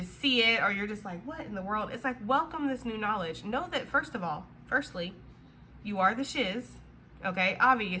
see it, or you're just like, what in the world? It's like, welcome this new knowledge. Know that firstly, you are the shiz. Okay,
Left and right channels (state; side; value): identical; both; correlation 1.00